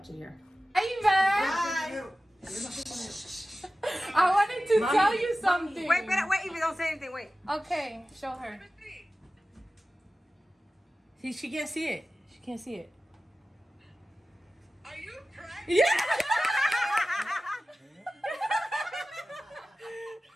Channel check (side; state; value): both; normal; correlation 0.95